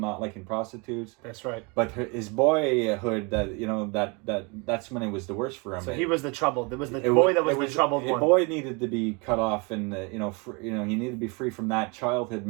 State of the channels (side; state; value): left; quieter; 30.1 dB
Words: liking prostitutes. That's right. But his boyhood, that's when it was the worst for him. So he was the troubled. It was the boy that was the troubled one. The boy needed to be cut off, and he needed to be free from that childhood